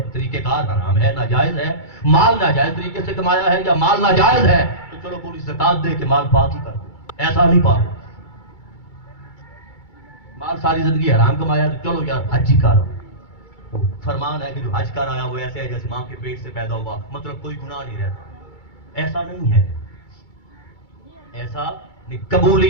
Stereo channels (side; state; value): right; late; 2.3 ms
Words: طریقہ کار حرام ہے، ناجائز ہے، مال ناجائز طریقے سے کمایا ہے یا مال ناجائز ہے تو چلو پوری زکات دے کے مال پاک ہی کر دو، ایسا نہیں پاک۔ مال ساری زندگی حرام کمایا تو چلو یار حج ہی کر، فرمان ہے کہ جو حج کر آیا وہ ایسے ہے جیسے ماں کے پیٹ سے پیدا ہوا، مطلب کوئی گناہ نہیں رہتا، ایسا نہیں ہے، ایسا نہیں۔